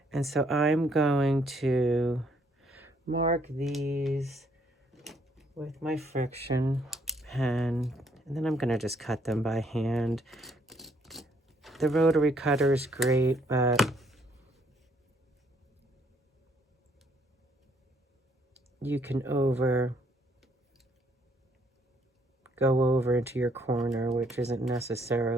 And so I'm going to mark these with my friction pen. And then I'm going to just cut them by hand. The rotary cutter is great, but you can go over into your corner, which isn't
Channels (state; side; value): normal; both; correlation 0.68